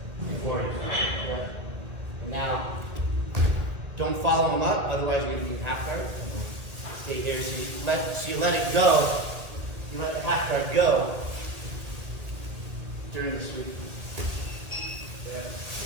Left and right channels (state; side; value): late; left; 1.8 ms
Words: before you. Yeah. And now, don't follow him up, otherwise you're going to be in half guard. Stay here. So you let it go. You let the half guard go during the sweep. Yeah,